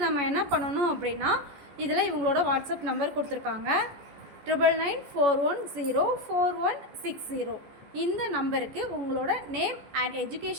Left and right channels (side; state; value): left; late; 14 ms